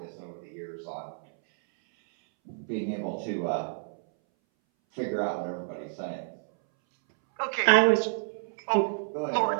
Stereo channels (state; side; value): silent; left; 58 dB below the other